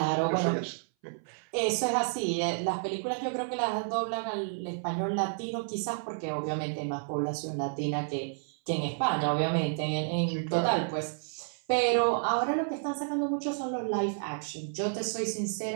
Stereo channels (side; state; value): left; silent; 57 dB below the other